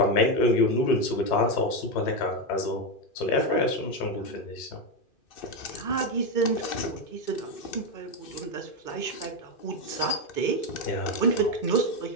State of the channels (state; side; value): late; right; 2.6 ms